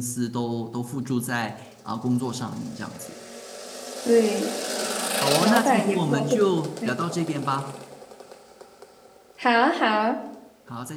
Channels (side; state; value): both; identical; correlation 1.00